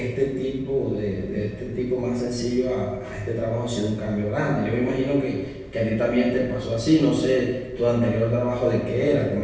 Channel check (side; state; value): both; identical; correlation 1.00